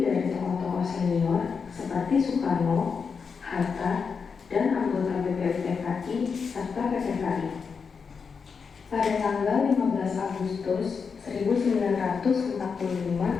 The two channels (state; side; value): quieter; right; 5.7 dB